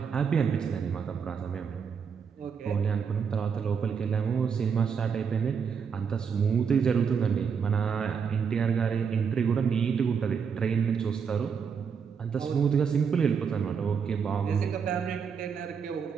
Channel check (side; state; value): left; quieter; 6.5 dB